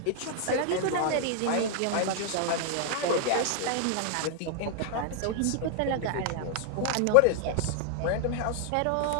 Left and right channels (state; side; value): different; both; correlation 0.00